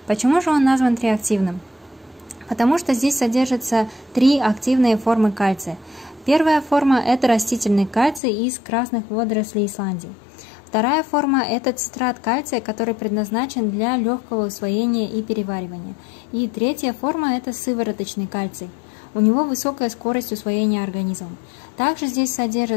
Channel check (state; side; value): drops out; right; at 8.2 s